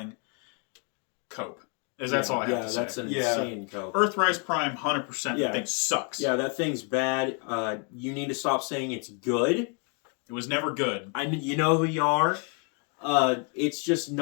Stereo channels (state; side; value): quieter; right; 37.1 dB